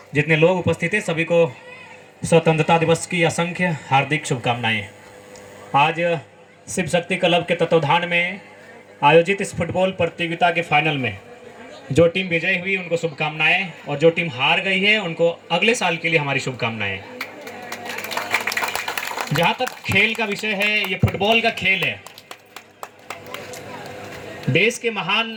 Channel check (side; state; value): both; identical; correlation 1.00